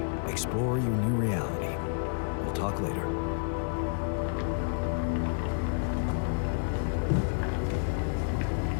Explore your new reality. We'll talk later.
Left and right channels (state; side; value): silent; right; digital silence